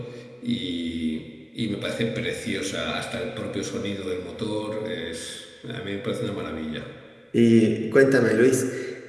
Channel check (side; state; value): both; identical; correlation 1.00